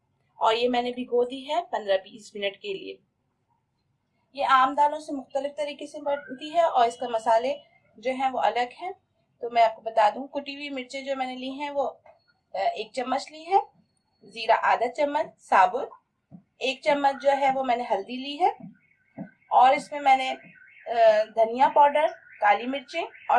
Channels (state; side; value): identical; both; correlation 1.00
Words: और ये मैंने भिगो दी है 15-20 मिनट के लिए। ये आम दालों से मुख्तलिफ तरीके से बनती है और इसका मसाले जो हैं वो अलग हैं। तो मैं आपको बता दूं, कुटी हुई मिर्चें जो मैंने ली हैं वो 1 चम्मच ली है, जीरा आधा चम्मच साबुत, 1 चम्मच जो है वो मैंने हल्दी ली है और इसमें मैंने धनिया पाउडर, काली मिर्चें